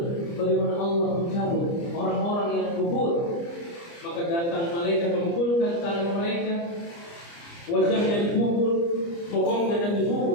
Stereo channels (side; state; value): right; late; 29 ms